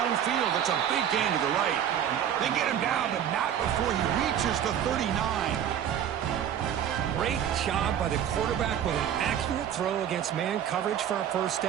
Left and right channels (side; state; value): left; quieter; 9.6 dB